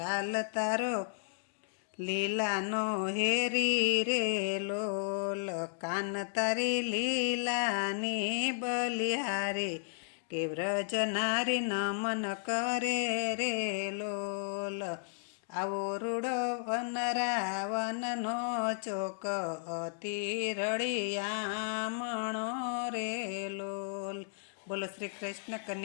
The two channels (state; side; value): silent; right; digital silence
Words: તારો લીલાનો હેરી રે લોલ. કાન તારી લીલાની બલિહારી કે વ્રજનારી નમન કરે રે લોલ. આવો રૂડો વન રાવણનો ચોક અતિ રળિયામણો રે લોલ. બોલો શ્રી કૃષ્ણ